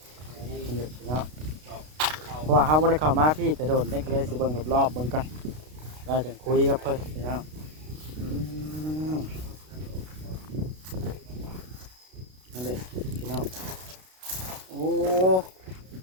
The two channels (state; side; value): late; left; 32 ms